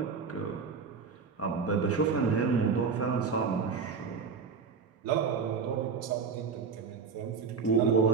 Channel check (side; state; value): left; quieter; 5.4 dB